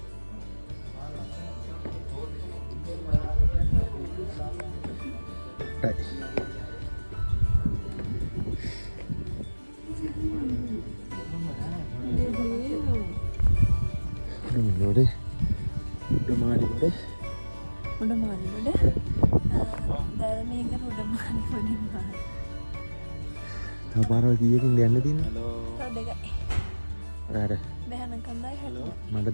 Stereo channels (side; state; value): both; inverted; correlation -1.00